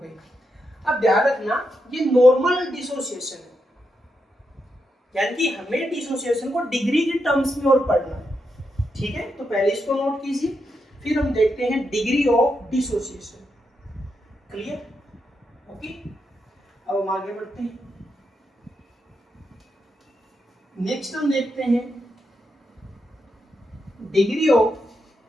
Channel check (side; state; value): both; normal; correlation 0.84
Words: अब ध्यान रखना, ये नॉर्मल डिसोसिएशन है, यानी कि हमें डिसोसिएशन को डिग्री के टर्म्स में और पढ़ना है, ठीक है। तो पहले इसको नोट कीजिए, फिर हम देखते हैं degree of dissociation. Clear, okay. अब हम आगे बढ़ते हैं, नेक्स्ट हम देखते हैं डिग्री ऑफ